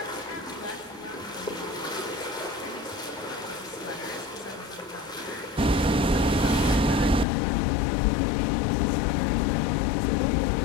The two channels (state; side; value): drops out; right; at 7.2 s